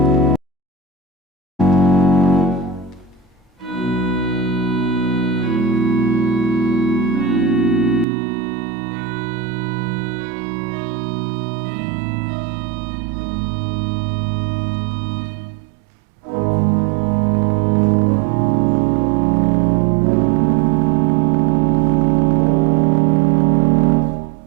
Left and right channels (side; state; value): left; drops out; at 8.1 s